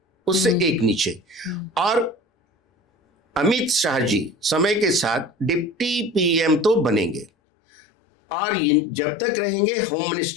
उससे एक नीचे। और अमित शाह जी समय के साथ डिप्टी पीएम तो बनेंगे, और जब तक रहेंगे होम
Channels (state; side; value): drops out; right; at 7.3 s